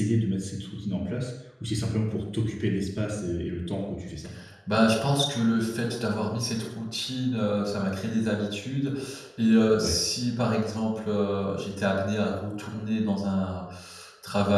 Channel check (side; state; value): both; identical; correlation 1.00